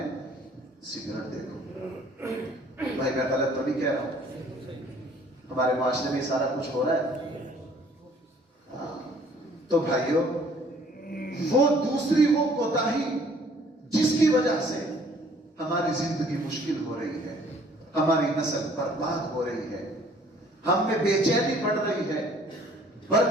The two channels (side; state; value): both; normal; correlation 0.57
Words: سگریٹ دیکھو. بھائی میں غلط تو نہیں کہہ رہا ہوں، ہمارے معاشرے میں سارا کچھ ہو رہا ہے. تو بھائیوں وہ دوسری وہ کوتاہی جس کی وجہ سے ہماری زندگی مشکل ہو رہی ہے، ہماری نسل برباد ہو رہی ہے، ہم میں بے چینی بڑھ رہی ہے،